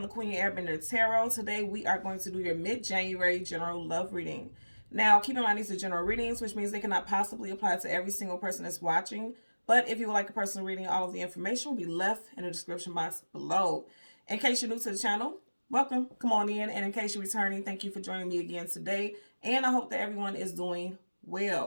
to Queen Airbender Tarot. Today we are going to do your mid-January general love reading. Now, keep in mind these are general readings, which means they cannot possibly apply to every single person that's watching. But if you would like a personal reading, all of the information will be left in the description box below. In case you're new to the channel, welcome, come on in. And in case you're returning, thank you for joining me again today. And I hope that everyone is doing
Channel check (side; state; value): both; inverted; correlation -1.00